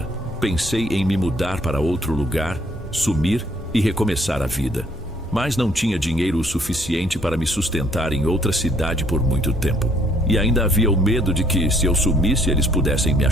Pensei em me mudar para outro lugar, sumir e recomeçar a vida. Mas não tinha dinheiro o suficiente para me sustentar em outra cidade por muito tempo. E ainda havia o medo de que, se eu sumisse, eles pudessem me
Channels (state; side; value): normal; both; correlation 0.64